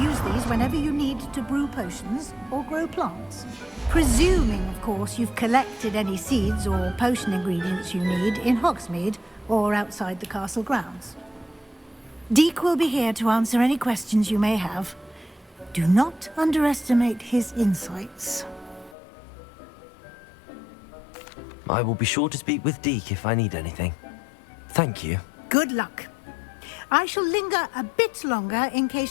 these whenever you need to brew potions or grow plants. Presuming, of course, you've collected any seeds or potion ingredients you need in Hogsmeade or outside the castle grounds. Deek will be here to answer any questions you may have. Do not underestimate his insights. I will be sure to speak with Deke if I need anything. Thank you. Good luck. I shall linger a bit longer in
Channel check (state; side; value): drops out; right; at 18.9 s